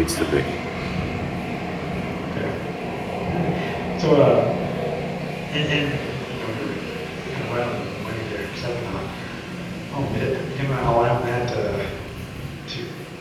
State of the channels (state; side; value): identical; both; correlation 1.00